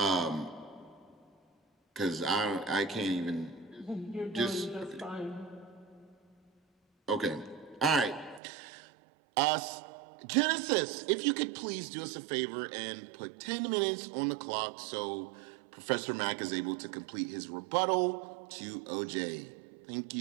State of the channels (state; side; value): drops out; left; at 8.4 s